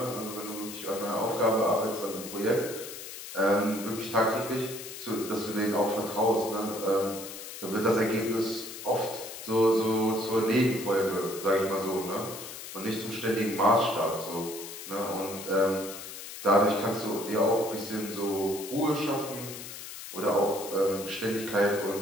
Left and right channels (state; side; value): noise; left; hiss, 11 dB below the sound